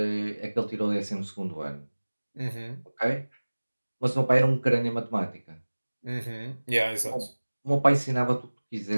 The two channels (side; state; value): both; inverted; correlation -1.00